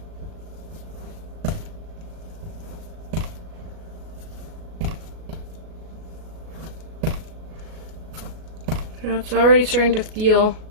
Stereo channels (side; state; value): left; late; 38 ms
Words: So it's already starting to feel